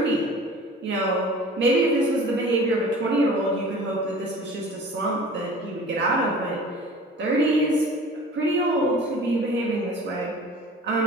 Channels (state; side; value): normal; both; correlation 0.43